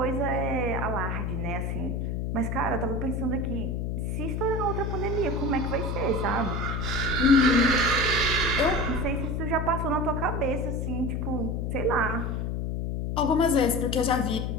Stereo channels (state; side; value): noise; left; hum, 1 dB below the sound